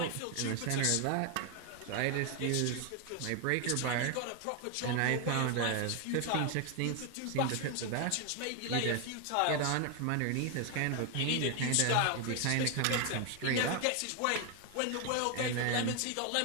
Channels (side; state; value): both; different; correlation 0.01